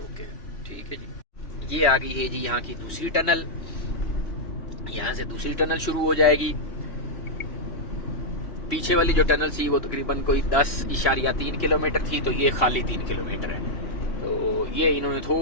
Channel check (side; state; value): right; late; 2.9 ms